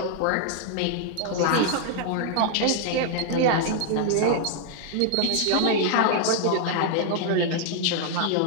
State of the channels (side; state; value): both; different; correlation 0.00